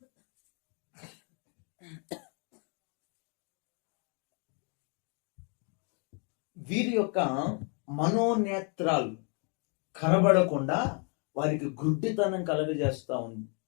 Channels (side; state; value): right; quieter; 37.6 dB